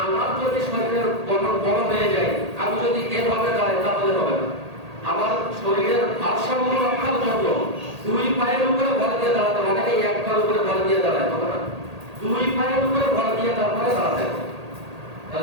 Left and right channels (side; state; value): left; late; 1.8 ms